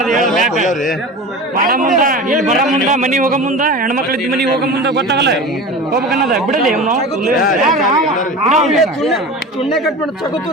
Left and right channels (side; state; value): both; normal; correlation 0.32